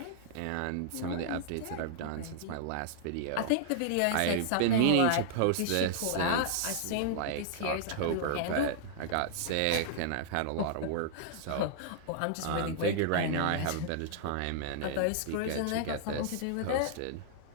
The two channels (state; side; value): different; both; correlation -0.01